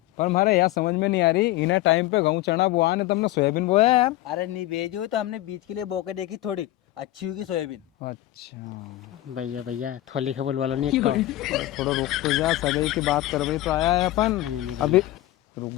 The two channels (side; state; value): right; quieter; 15.7 dB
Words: पर हमारे यहाँ समझ में नहीं आ रही, इन्हें टाइम पे गेहूं चना बुआ ने तुमने सोयाबीन बोया यार। अरे नहीं भेजो तो हमने बीज के लिए बोके देखी, थोड़ी अच्छी होगी सोयाबीन। अच्छा भैया थोली खबर वाला नहीं थोड़ा रुक तो जा, सगाई की बात कर भाई तो आया है अपन। अभी रुक